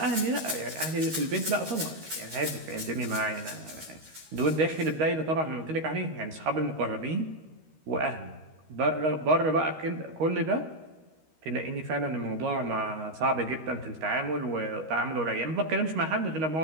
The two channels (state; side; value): late; left; 13 ms